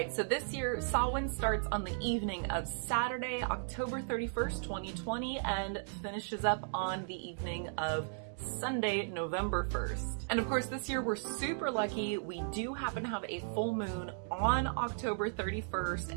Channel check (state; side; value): silent; left; digital silence